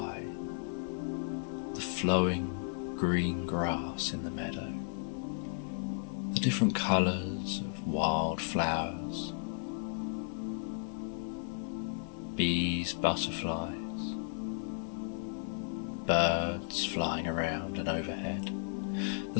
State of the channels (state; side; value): silent; right; 55 dB below the other